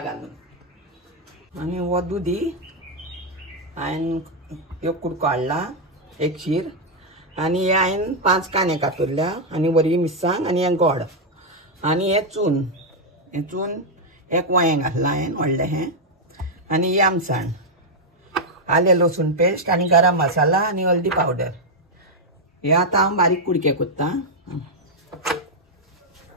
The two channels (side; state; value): both; normal; correlation 0.00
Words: आनी हो दुदी हांवें एक कुडको हाडला, एक शीर, आनी हे हांवें 5 कांदे कातरल्या, आनी बरी मिरसांग, आनी हे गोड, आनी हे चून एक वांयें घातलां हांवें व्हडलें हें, आनी ही आमसाण, आले लसूण पेस्ट, आनी गरम मसाला, आनी हल्दी पावडर। हे आतां हांव बारीक कुडके करता।